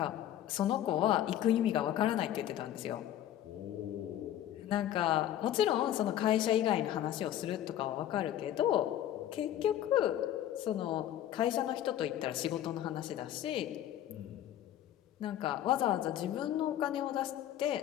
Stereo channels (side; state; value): right; quieter; 11.8 dB